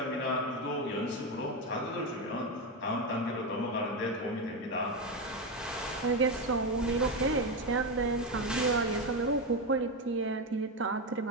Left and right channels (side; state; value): both; normal; correlation 0.12